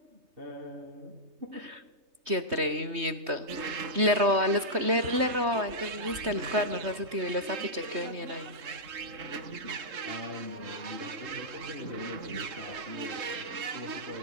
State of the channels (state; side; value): late; left; 3.2 ms